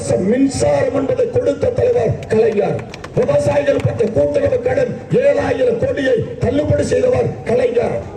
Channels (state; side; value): identical; both; correlation 1.00